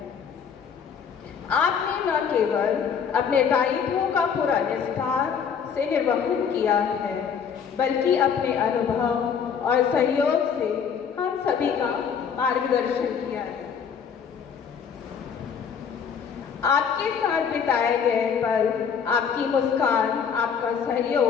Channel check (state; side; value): quieter; right; 7.0 dB